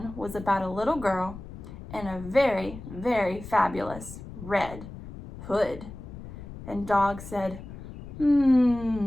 was about a little girl in a very, very fabulous red hood. And Dog said, maybe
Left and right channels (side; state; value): left; noise; rumble, 13 dB below the sound